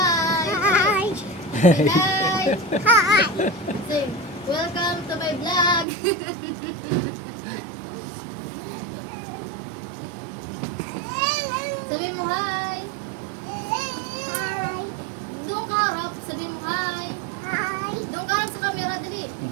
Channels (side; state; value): left; drops out; at 5.9 s